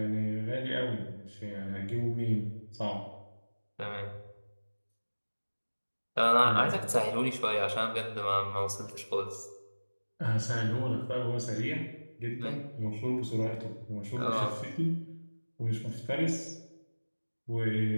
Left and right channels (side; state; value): both; inverted; correlation -1.00